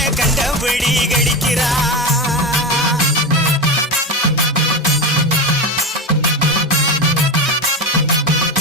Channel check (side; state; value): both; normal; correlation 0.20